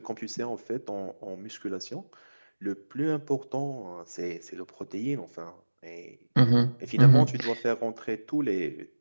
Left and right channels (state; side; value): inverted; both; correlation -1.00